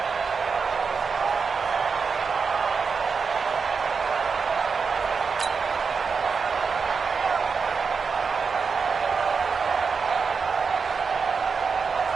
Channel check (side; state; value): left; quieter; 5.3 dB